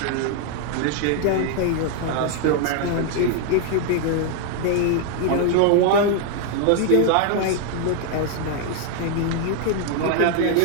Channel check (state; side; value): different; both; correlation 0.00